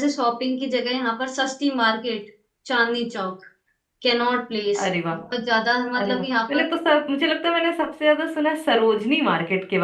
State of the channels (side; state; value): both; identical; correlation 1.00